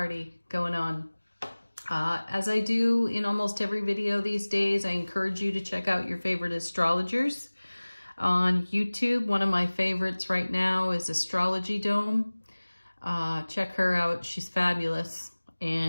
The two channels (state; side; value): inverted; both; correlation -1.00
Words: going on. As I do in almost every video these days, I encourage you to check out your favorite astrologers on YouTube. One of my favorites right now is Astrology Dome. Check her out. She's fabulous,